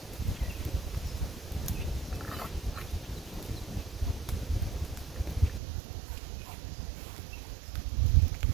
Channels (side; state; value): left; drops out; at 5.6 s